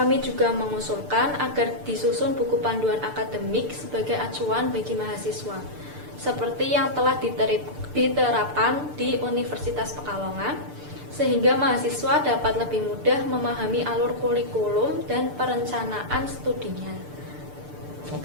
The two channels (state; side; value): late; left; 6.8 ms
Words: juga mengusulkan agar disusun buku panduan akademik sebagai acuan bagi mahasiswa, seperti yang telah diterapkan di Universitas Pekalongan, sehingga mahasiswa dapat lebih mudah memahami alur kurikulum dan perencanaan studinya.